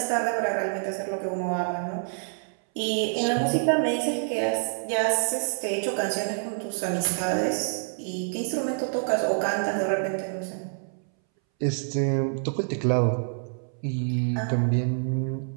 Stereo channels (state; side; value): silent; left; 60 dB below the other